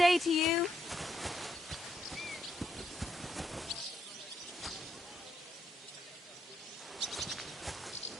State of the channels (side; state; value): both; normal; correlation 0.77